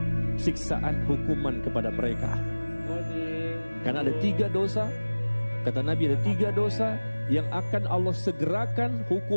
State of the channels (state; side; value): inverted; both; correlation -1.00